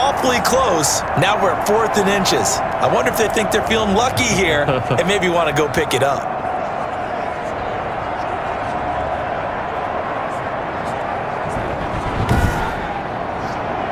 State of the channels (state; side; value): identical; both; correlation 1.00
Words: close. Now we're at 4th and inches. I wonder if they think they're feeling lucky here and maybe want to go pick it up.